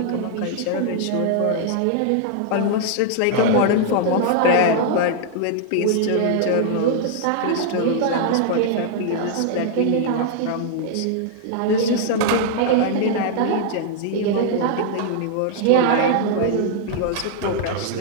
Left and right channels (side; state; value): both; different; correlation -0.01